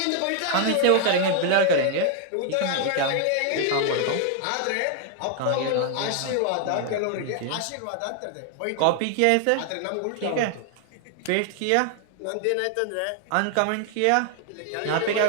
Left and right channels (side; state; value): both; different; correlation 0.00